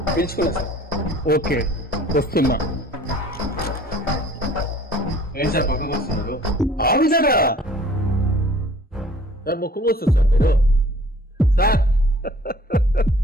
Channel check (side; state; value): both; normal; correlation 0.52